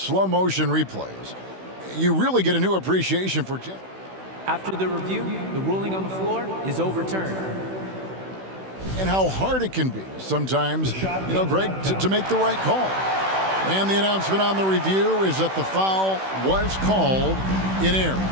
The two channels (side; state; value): left; late; 16 ms